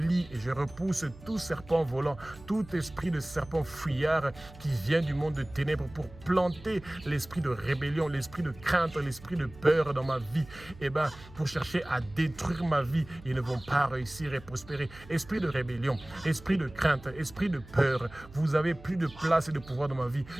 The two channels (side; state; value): right; noise; hum, 19 dB below the sound